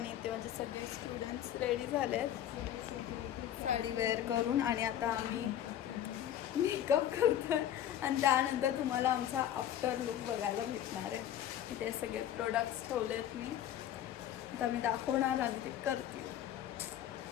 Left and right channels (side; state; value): right; quieter; 11.1 dB